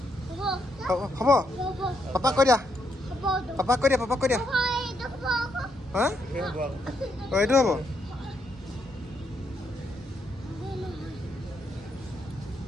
হ'ব। পাপাক কৈ দিয়া। হা অঁ এইটো হ'ব।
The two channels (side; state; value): both; normal; correlation 0.77